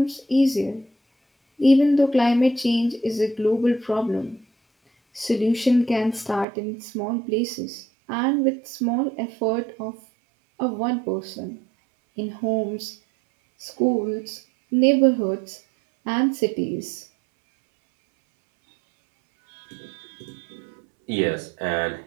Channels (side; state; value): left; drops out; at 6.5 s